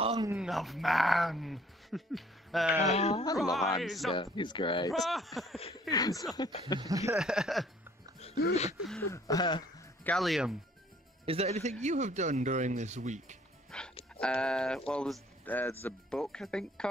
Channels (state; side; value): normal; both; correlation 0.58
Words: of man. I love Rise Answer. He's great. Gallium, is there anything you have done during this week? Well, there's a book I think